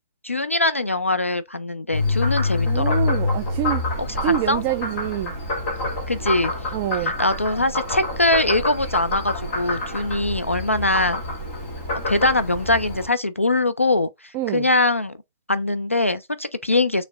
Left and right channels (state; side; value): inverted; both; correlation -0.51